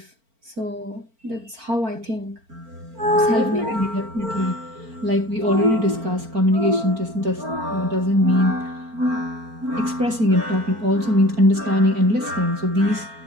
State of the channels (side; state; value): left; late; 4.4 ms